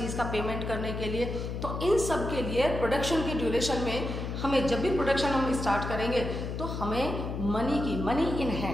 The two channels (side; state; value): left; noise; hum, 5 dB below the sound